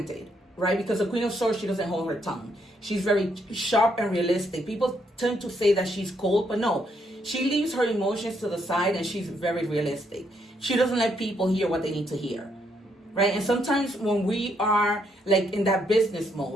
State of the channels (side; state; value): both; normal; correlation 0.74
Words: right? Because the Queen of Swords, she doesn't hold her tongue. She's very sharp and realistic. People tend to say that she's cold, but no, she leaves her emotions to the side, and she's very realistic. She doesn't let people hear what they need to hear, right? And sometimes when we are like in that business